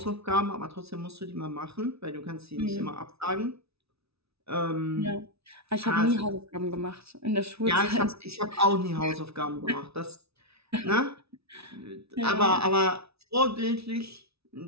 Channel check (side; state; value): left; late; 0.78 ms